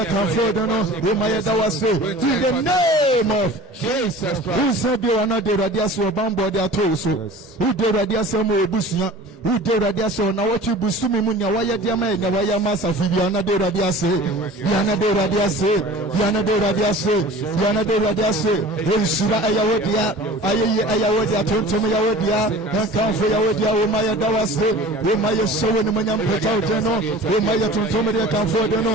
Umaya dawase, in the name of Jesus Christ. Who said you are not the radiaso bambo de atoso? Who the radiaso mo busia? Who de radiaso na what you busumi munya waya diamaye, Yawaya masa fibiana de radiase, Yana de radiase, Yana de radiase. Yana de radiase, Ensura ayawodia, ayawodia, Tontum yawodia, Kanfu yawodia, Umaya dawase, Umaya sowen manyam petauteno, Umaya Tontum de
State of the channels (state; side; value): normal; both; correlation 0.41